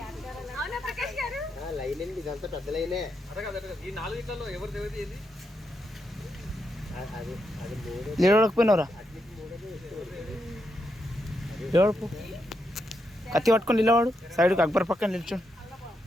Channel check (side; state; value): both; normal; correlation 0.83